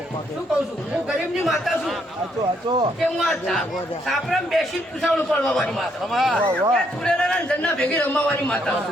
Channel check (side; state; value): both; normal; correlation 0.72